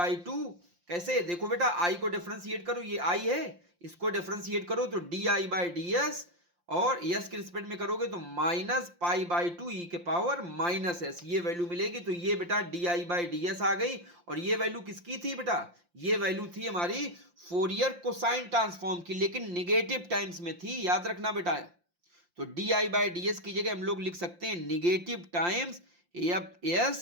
2। कैसे, देखो बेटा आई को डिफरेंशिएट करो, ये आई है, इसको डिफरेंशिएट करो तो d I by D s, और एस के रिस्पेक्ट में करोगे तो माइनस पाई बाई 2 ई के पावर माइनस एस, ये वैल्यू मिलेगी। तो ये बेटा d I by D s आ गई, और ये वैल्यू किसकी थी बेटा, ये वैल्यू थी हमारी फोरियर कोसाइन ट्रांसफॉर्म की, लेकिन निगेटिव टाइम्स में थी, याद रखना बेटा। तो d I by D S की जगह हम लोग लिख सकते हैं negative times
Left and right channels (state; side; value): late; left; 5.7 ms